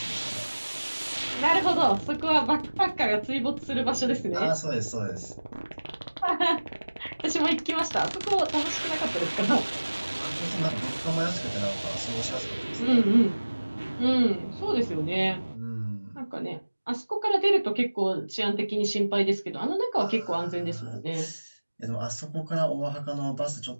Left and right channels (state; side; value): inverted; both; correlation -1.00